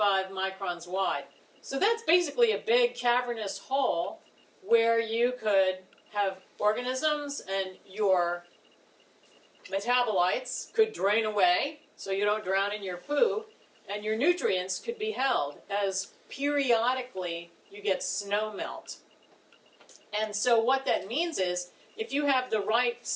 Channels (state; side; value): identical; both; correlation 1.00